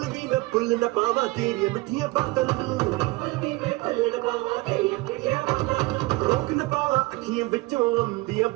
ਵੀ ਮੈਂ ਭੁੱਲ ਨਾ ਪਾਵਾਂ ਤੇਰੀਆਂ ਮਿੱਠੀਆਂ ਬਾਤਾਂ ਨੂੰ ਰੋਕ ਨਾ ਪਾਵਾਂ ਅੱਖੀਆਂ ਵਿੱਚੋਂ ਆਉਂਦੀਆਂ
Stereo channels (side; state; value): left; quieter; 21.9 dB